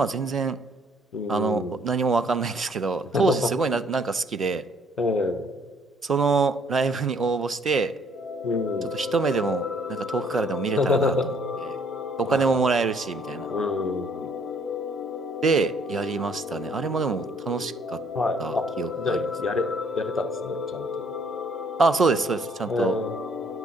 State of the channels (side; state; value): both; normal; correlation 0.63